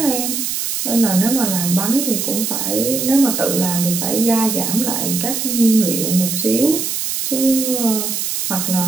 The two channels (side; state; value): right; noise; hiss, 2 dB below the sound